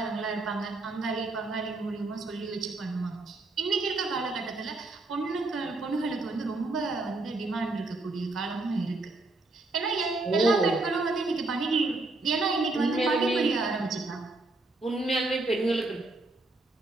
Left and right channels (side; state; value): left; quieter; 3.1 dB